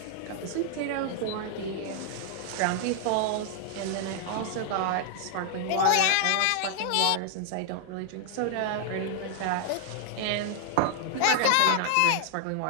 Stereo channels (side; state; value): both; different; correlation 0.00